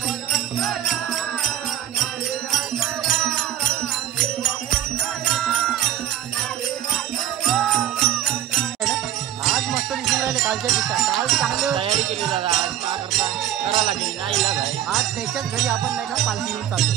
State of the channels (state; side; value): quieter; left; 11.6 dB